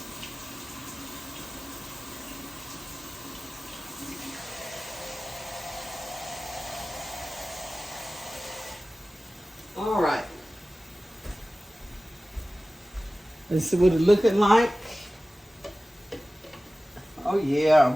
All right. Let's see what it's looking like. Oh,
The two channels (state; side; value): normal; both; correlation 0.96